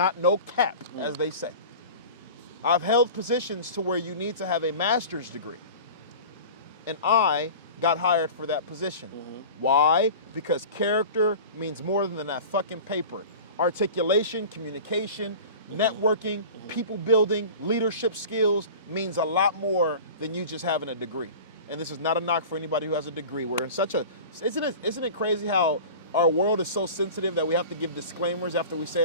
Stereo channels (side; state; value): both; inverted; correlation -0.37